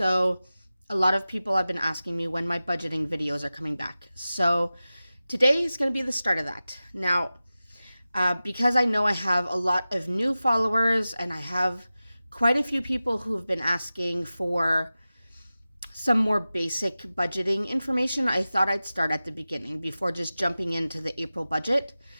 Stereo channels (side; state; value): both; inverted; correlation -0.96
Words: a lot of people have been asking me when my budgeting videos are coming back. So today is going to be the start of that. Now, because I know I have a lot of new followers and I have quite a few people who have been asking for some more basic budgeting information, I thought I'd start at the beginning before just jumping into the April budget.